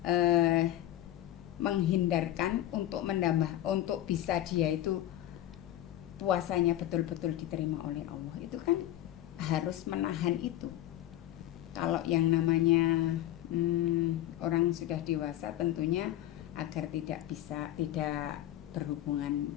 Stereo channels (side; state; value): right; quieter; 13.5 dB